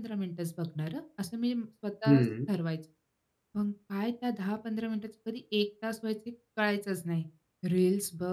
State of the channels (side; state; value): both; identical; correlation 1.00